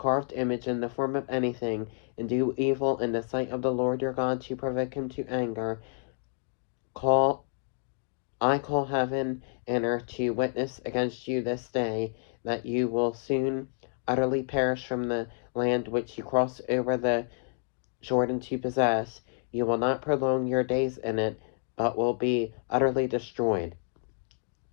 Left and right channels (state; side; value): silent; right; digital silence